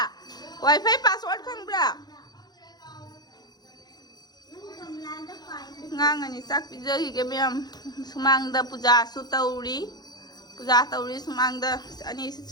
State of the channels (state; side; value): late; right; 0.20 ms